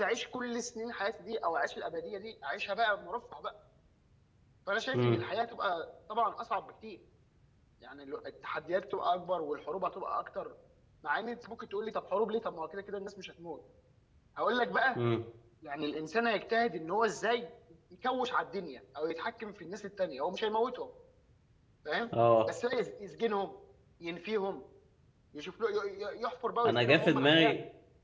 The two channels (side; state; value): both; identical; correlation 1.00